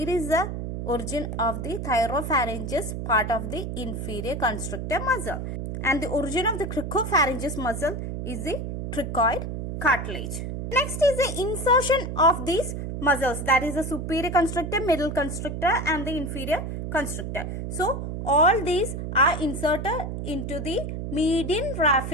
is the origin of the thyropharynges part of the inferior constrictor muscle. And the origin of the cricopharynges muscle is the cricoid cartilage. Next is the insertion of these muscles, that is the superior constrictor, middle constrictor and the inferior constrictor. So all these are inserted into the median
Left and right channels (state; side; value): noise; right; hum, 5 dB below the sound